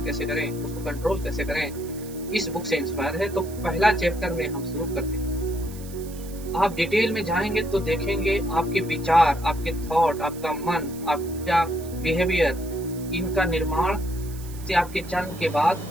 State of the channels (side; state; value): right; noise; hiss, 18 dB below the sound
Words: कैसे करें, उसको कंट्रोल कैसे करें, इस बुक से इंस्पायर है। तो पहला चैप्टर में हम शुरू करते हैं। आप डिटेल में जाएंगे तो देखेंगे आपके विचार, आपके थॉट, आपका मन, आपका बिहेवियर, इनका निर्माण से आपके जन्म के बाद